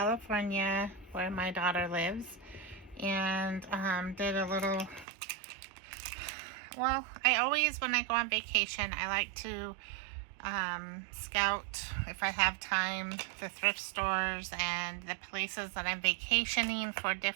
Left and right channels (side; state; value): left; drops out; at 5.1 s